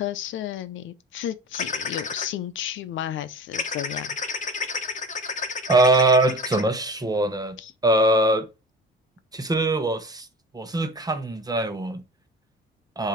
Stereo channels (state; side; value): normal; both; correlation 0.35